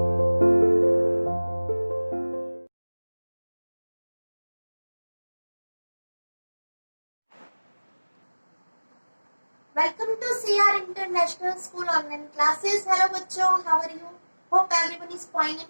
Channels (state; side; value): inverted; both; correlation -1.00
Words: to CR International School online classes. Hello बच्चों, how are you? Hope everyone is fine